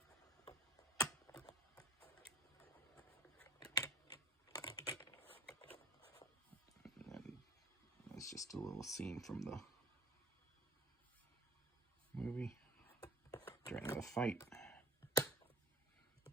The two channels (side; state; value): both; normal; correlation 0.46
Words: And then it's just a little scene from the movie during the fight.